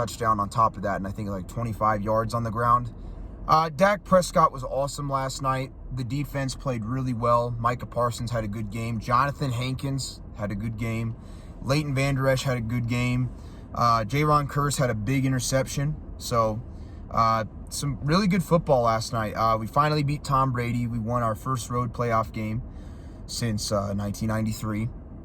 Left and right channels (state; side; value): identical; both; correlation 1.00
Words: on top of that, and I think like 25 yards on the ground. Dak Prescott was awesome last night. The defense played really well. Micah Parsons had a good game. Jonathan Hankins had a good game. Leighton Vander Esch had a good game. Jaron Kearse had a big interception. So, some really good football last night. We finally beat Tom Brady. We won our first road playoff game since 1993.